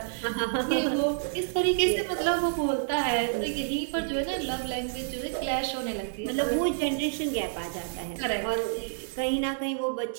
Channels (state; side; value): silent; left; digital silence